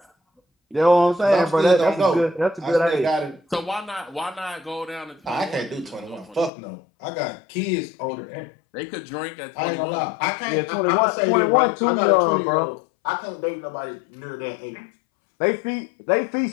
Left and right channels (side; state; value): right; drops out; at 6.5 s